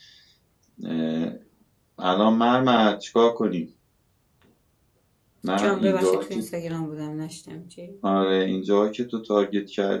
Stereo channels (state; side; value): identical; both; correlation 1.00